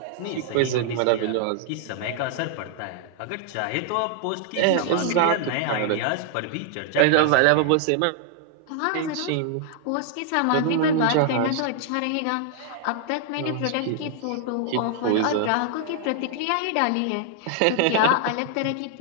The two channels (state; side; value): different; both; correlation 0.00